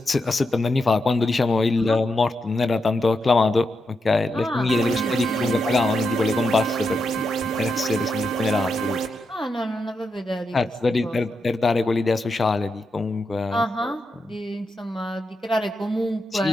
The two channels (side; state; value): both; normal; correlation 0.85